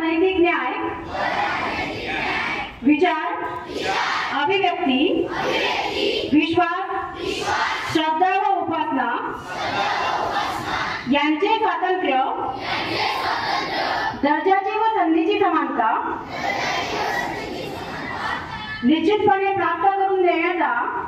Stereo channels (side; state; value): both; identical; correlation 1.00